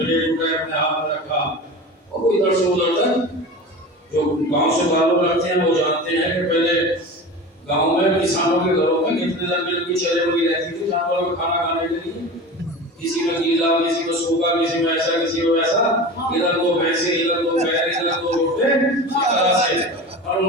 اٹھائے, اپنے ہاتھ میں رکھا, اور وہ ادھر سے ادھر تک. جو گاؤں سے تعلق رکھتے ہیں وہ جانتے ہیں کہ پہلے گاؤں میں کسانوں کے گھروں میں کتنے لمبی لمبی چلے ہوئی رہتی تھی جانوروں کو کھانا کھانے کے لیے. کسی میں گیلا, کسی میں سوکھا, کسی میں ایسا, کسی میں ویسا, ادھر 2 بھینسیں, ادھر 2 بیل, ادھر 2 روٹے, اس طرح سے, اور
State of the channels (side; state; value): both; normal; correlation 0.32